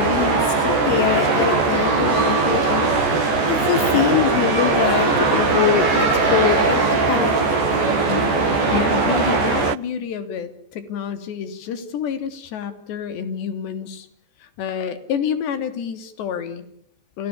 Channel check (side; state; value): right; late; 14 ms